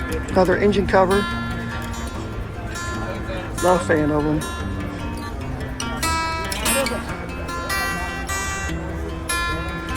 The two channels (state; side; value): identical; both; correlation 1.00